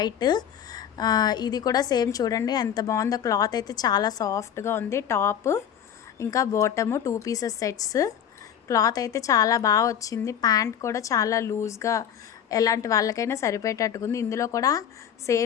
ఇది కూడా సేమ్ చూడండి ఎంత బాగుందో. క్లాత్ అయితే చాలా సాఫ్ట్గా ఉంది. టాప్ ఇంకా బాటము 2 పీసెస్ సెట్స్. క్లాత్ అయితే చాలా బాగా వచ్చింది. ప్యాంట్ కూడా చాలా లూజ్గా, ఎలాంటి వాళ్ళకైనా సరిపోయేటట్టుగా ఉంది. ఇందులో కూడా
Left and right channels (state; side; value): quieter; right; 9.1 dB